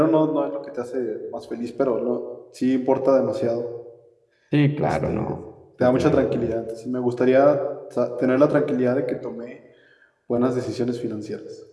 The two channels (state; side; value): identical; both; correlation 1.00